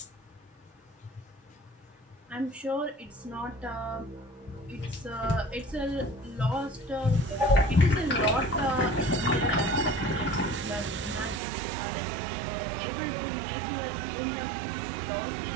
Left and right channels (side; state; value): left; drops out; at 11.4 s